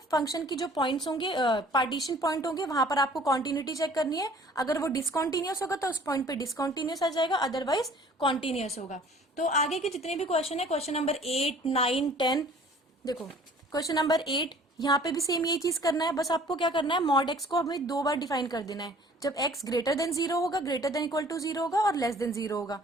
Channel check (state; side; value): normal; both; correlation 0.52